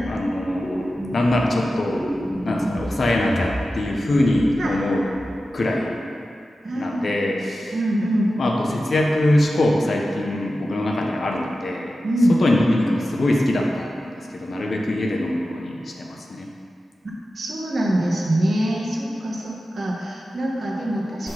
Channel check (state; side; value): normal; both; correlation 0.93